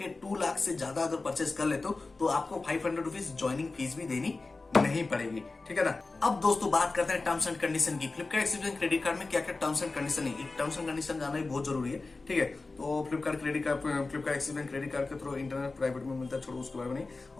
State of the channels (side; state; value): right; quieter; 3.6 dB